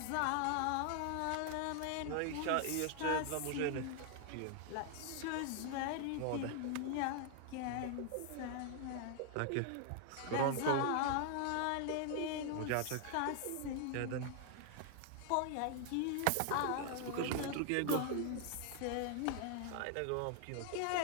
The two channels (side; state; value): both; different; correlation 0.00